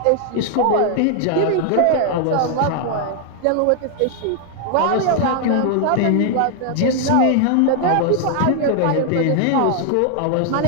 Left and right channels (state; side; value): different; both; correlation 0.00